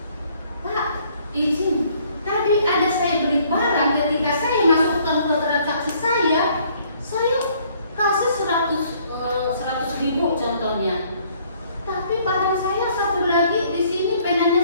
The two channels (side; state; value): both; inverted; correlation -0.62